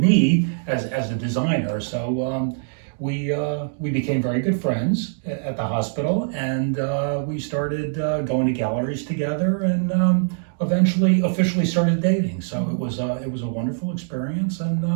as a designer. So we became very good friends at the hospital, and we started going to galleries together, and eventually officially started dating. So it was a wonderful experience, and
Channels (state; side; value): silent; left; digital silence